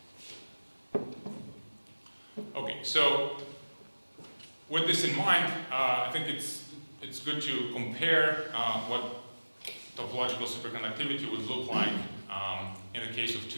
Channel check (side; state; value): both; inverted; correlation -1.00